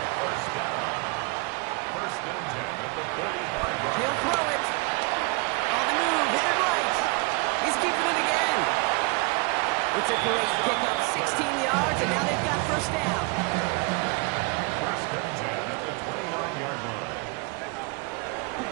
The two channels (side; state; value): left; quieter; 29.6 dB